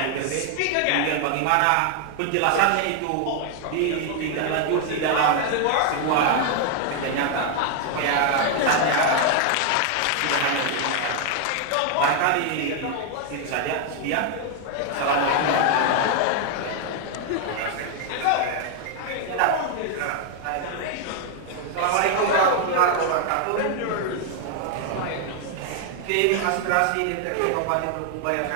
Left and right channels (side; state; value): both; different; correlation 0.00